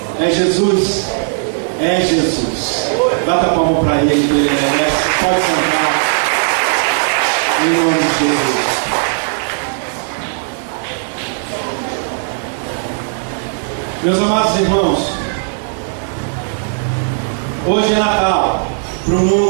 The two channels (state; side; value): silent; left; 69 dB below the other